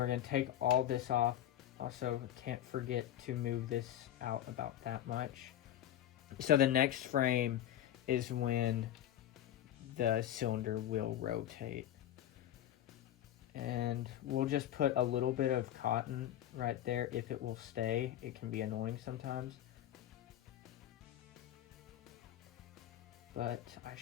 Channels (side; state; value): right; quieter; 11.7 dB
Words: going to take all this off. Also, can't forget to move this out about that much. So the next frame is when the cylinder will rotate. And we'll just put a little bit of cotton right there if it will stay. It can be annoying sometimes. But I